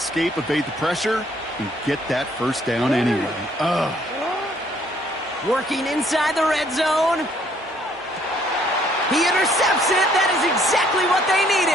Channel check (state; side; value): normal; both; correlation 0.64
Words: evade the pressure, and get that 1st down anyway. Ugh. Working inside the red zone. He intercepts it. That is exactly what they